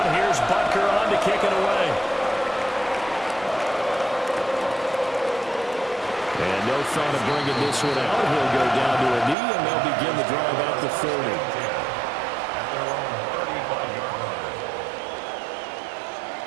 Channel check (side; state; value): left; drops out; at 9.3 s